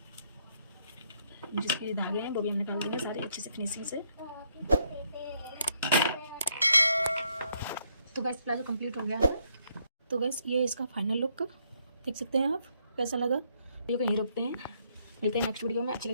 जिसके धागे हैं वो भी हम निकाल देंगे सारे अच्छे से फिनिशिंग से। तो गाइस प्लाजो कंप्लीट हो गया है। तो गाइस ये इसका फाइनल लुक देख सकते हैं आप, कैसा लगा। वीडियो को यहीं रोकते हैं, मिलते हैं नेक्स्ट वीडियो में। अच्छा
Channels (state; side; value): inverted; both; correlation -0.73